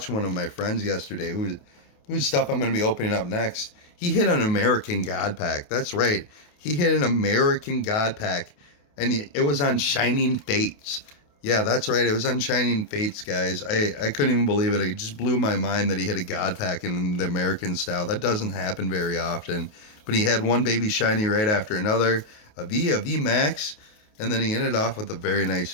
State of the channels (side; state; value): right; late; 28 ms